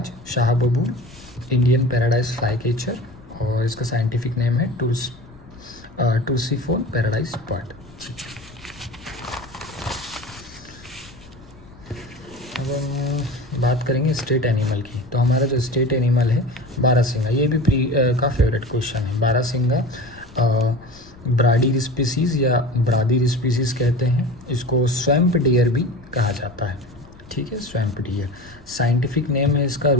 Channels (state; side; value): noise; left; rumble, 22 dB below the sound